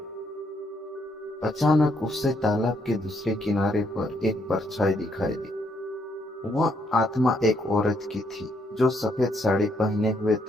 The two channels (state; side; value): normal; both; correlation 0.73